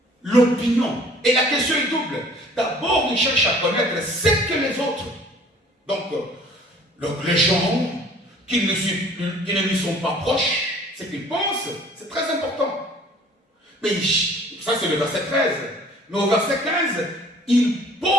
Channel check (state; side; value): normal; both; correlation 0.53